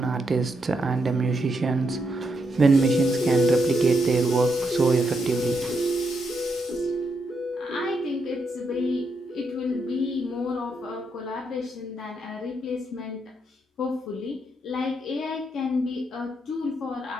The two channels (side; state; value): both; normal; correlation 0.80